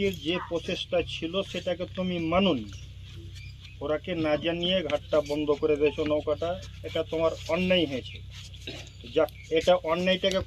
যে প্রচেষ্টা ছিল সেটাকে তুমি মানোনি ওরাকে না জানিয়ে ঘাটটা বন্ধ করে দিয়েছো নৌকাটা এটা তোমার অন্যায় হয়েছে যাক এটা অন্যায়টাকে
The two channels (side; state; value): both; identical; correlation 1.00